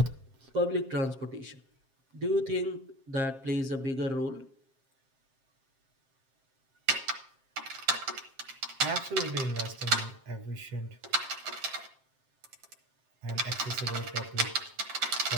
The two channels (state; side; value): late; left; 7.5 ms